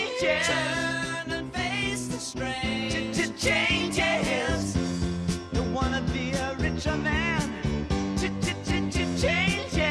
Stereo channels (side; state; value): both; identical; correlation 1.00